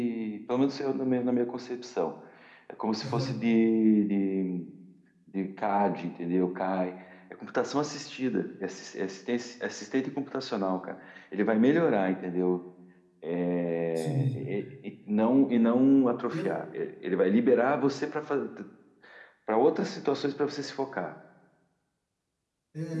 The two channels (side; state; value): both; identical; correlation 1.00